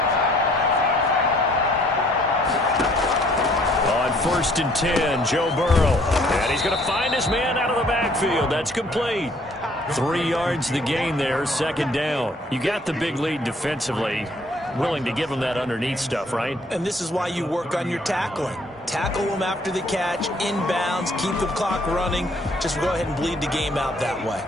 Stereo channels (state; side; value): normal; both; correlation 0.61